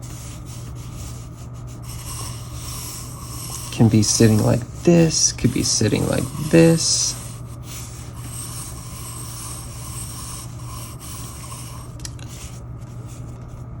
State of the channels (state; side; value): identical; both; correlation 1.00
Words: Can be sitting like this, could be sitting like this.